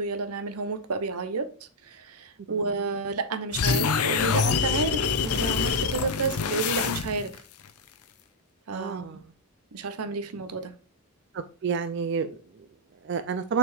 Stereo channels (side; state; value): both; normal; correlation -0.02